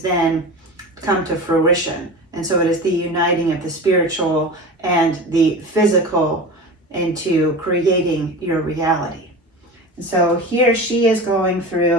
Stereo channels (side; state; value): both; normal; correlation 0.31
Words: then come to fruition. And so it is the uniting of the spiritual and the physical into creating your reality. And so here she is going